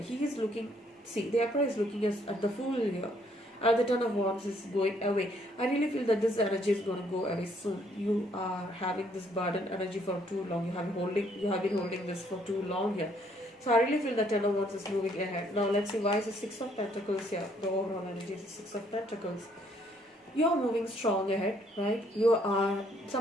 is looking, see, the Emperor is looking at the fool here. And the 10 of wands is going away. I really feel that this energy is going to go away soon. You are having this burden energy for too long. You have been holding this for too long here. So I really feel that Ten of Wands is moving ahead. Now let's see why is the Six of Pentacles here. The overall energy is the Six of Pentacles. You are moving strong ahead, right?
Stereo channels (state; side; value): normal; both; correlation 0.67